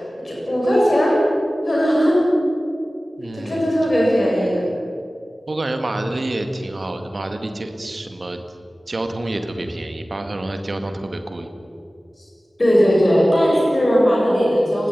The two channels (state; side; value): normal; both; correlation 0.96